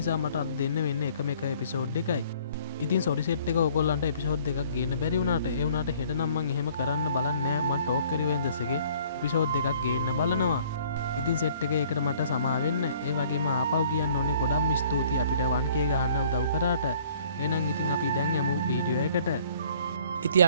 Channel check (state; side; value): inverted; both; correlation -0.56